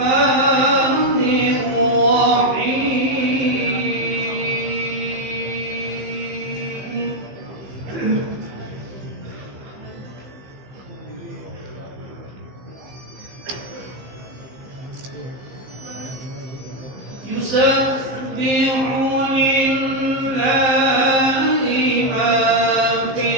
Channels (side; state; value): left; late; 15 ms